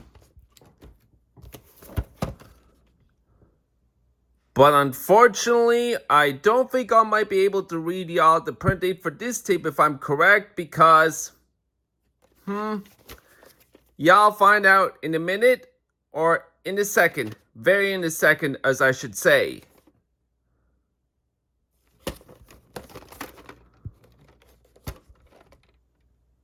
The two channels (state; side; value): identical; both; correlation 1.00